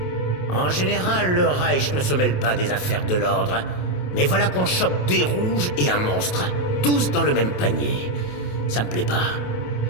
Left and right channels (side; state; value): right; late; 28 ms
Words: En général, le Reich ne se mêle pas des affaires de l'ordre. Mais voilà qu'on chope des rouges et un monstre. Tous dans le même panier. Ça me plaît pas.